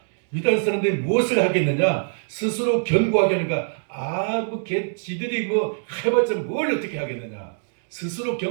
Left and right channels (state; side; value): silent; left; 63 dB below the other